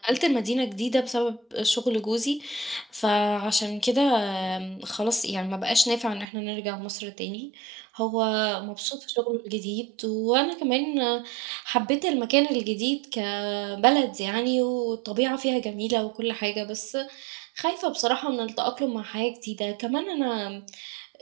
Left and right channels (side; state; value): left; drops out; at 6.2 s